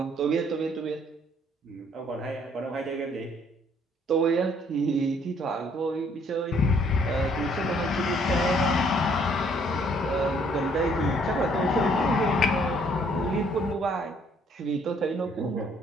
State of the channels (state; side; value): normal; both; correlation 0.64